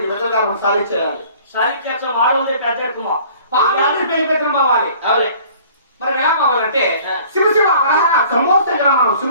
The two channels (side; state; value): both; inverted; correlation -0.51